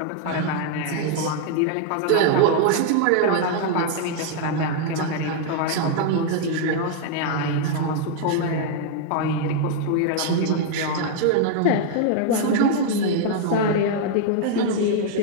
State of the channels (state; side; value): different; both; correlation 0.00